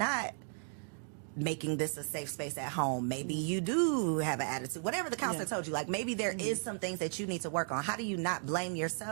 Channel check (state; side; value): silent; left; 54 dB below the other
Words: making this a safe space at home? Maybe you do have an attitude, whatever the counselor told you, like maybe there is some things that you need to work on. How do you not blame